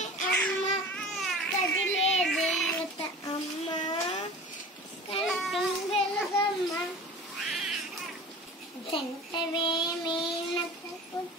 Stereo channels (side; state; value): both; normal; correlation 0.39